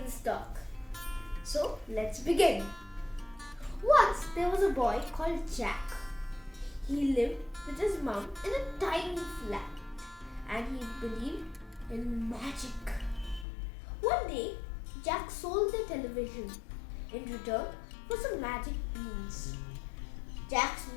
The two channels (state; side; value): drops out; right; at 13.5 s